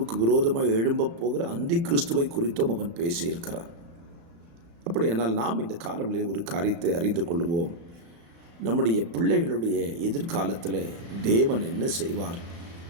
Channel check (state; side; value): late; left; 36 ms